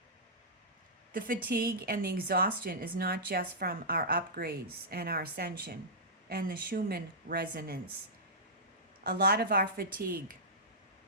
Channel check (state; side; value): normal; both; correlation -0.14